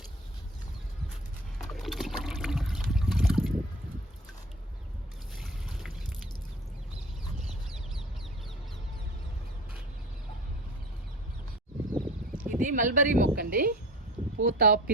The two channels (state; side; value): normal; both; correlation 0.39